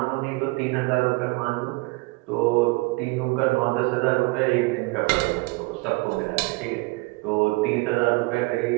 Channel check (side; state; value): left; quieter; 25.3 dB